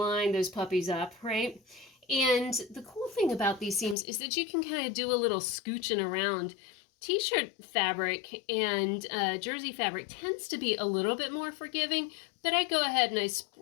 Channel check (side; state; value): right; drops out; at 4.0 s